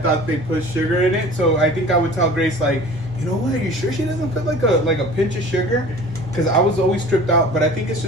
thought they put sugar in it. So I think I would tell Grace like, you know what? Are you sure she doesn't put like a pinch of sugar? Because I was always tripped out. But I think it's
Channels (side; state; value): both; normal; correlation 0.43